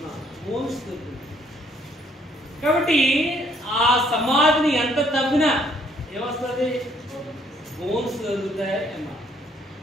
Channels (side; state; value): both; normal; correlation 0.65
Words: బోన్స్ దొరికింది. కాబట్టి ఆ సమాధిని ఎంత తవ్వినా ఏమొస్తుంది? బోన్స్ దొరుకుతాయి అమ్మా,